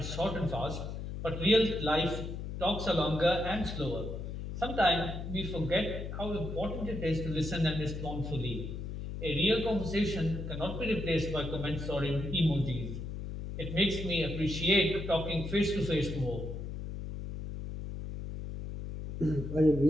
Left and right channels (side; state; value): left; noise; hum, 6 dB below the sound